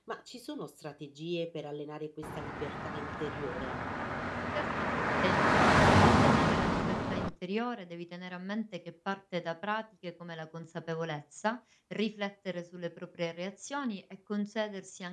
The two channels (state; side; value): identical; both; correlation 1.00